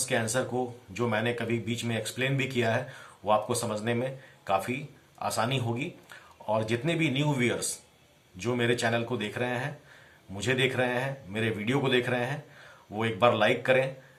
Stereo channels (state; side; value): identical; both; correlation 1.00